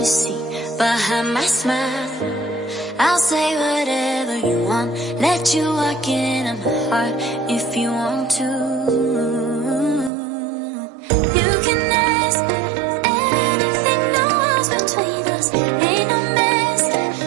see behind my smile. I'll say whatever you want, let you walk into my heart if you want to. You can ask me anything, no walls between us, ain't no mess.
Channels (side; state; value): left; drops out; at 10.1 s